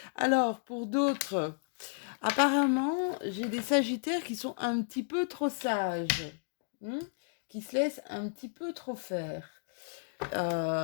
Alors, pour d'autres, apparemment, j'ai des sagittaires qui sont un petit peu trop sages, hein, qui se laissent un petit peu trop faire.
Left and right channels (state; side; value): silent; right; digital silence